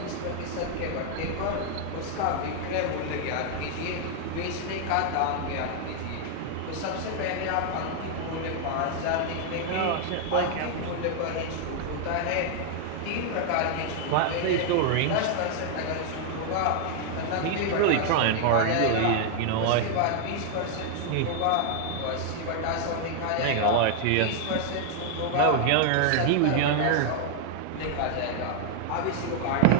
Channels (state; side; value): different; both; correlation 0.00